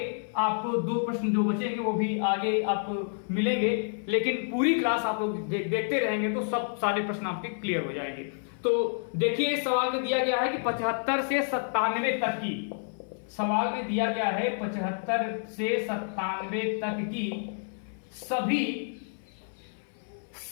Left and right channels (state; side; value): silent; right; 56 dB below the other